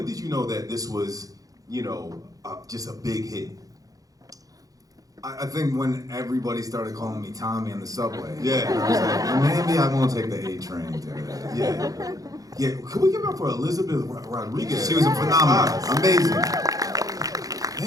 did you know that this was, just a big hit? I think when everybody started calling me Tommy on the subway. Yeah. I was like, maybe I won't take the A train to Yeah. Can we give it up for Elizabeth Rodriguez? She was a phenomenon. Amazing.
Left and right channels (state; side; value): late; left; 0.17 ms